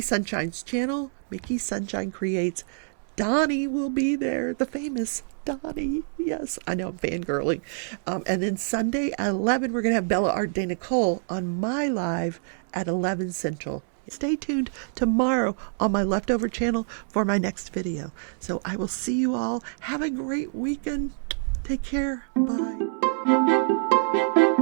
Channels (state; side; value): silent; left; 61 dB below the other